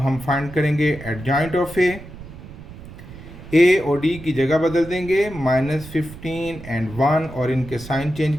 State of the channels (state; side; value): noise; right; rumble, 15 dB below the sound